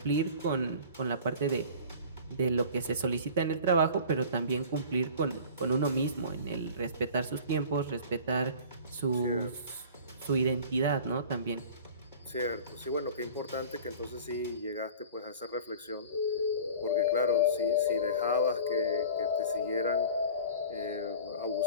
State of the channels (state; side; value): inverted; both; correlation -0.41